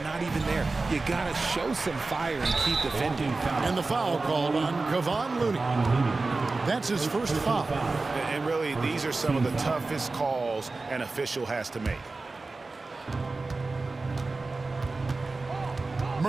not even there. You gotta show some fire and keep defending. And the foul called on Kevon Looney. That's his first foul. And really, these are some of the toughest calls an official has to make.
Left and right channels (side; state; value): left; quieter; 3.6 dB